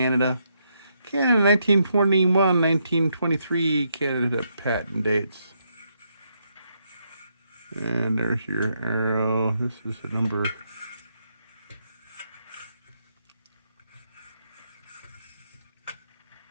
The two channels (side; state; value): both; inverted; correlation -0.78